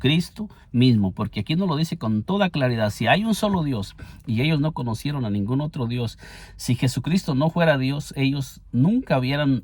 mismo, porque aquí nos lo dice con toda claridad. Si hay un solo Dios y ellos no conocieron a ningún otro Dios, si Jesucristo no fuera Dios, ellos nunca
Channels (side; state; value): both; identical; correlation 1.00